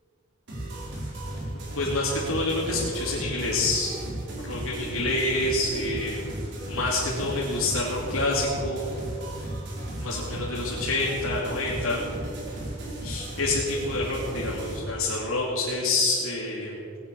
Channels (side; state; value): both; normal; correlation 0.17